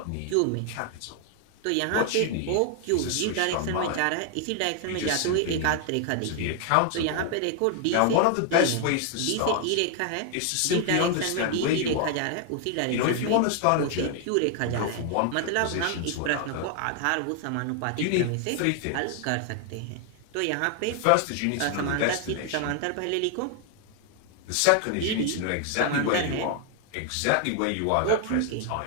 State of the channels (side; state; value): both; different; correlation 0.00